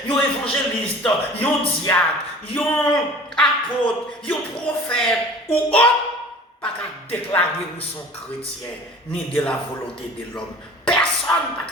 un évangéliste, un diacre, un apôtre, un prophète ou autre, pas qu'à déclarer qu'ils sont chrétiens, ni de la volonté de l'homme. Personne pas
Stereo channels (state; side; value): normal; both; correlation 0.44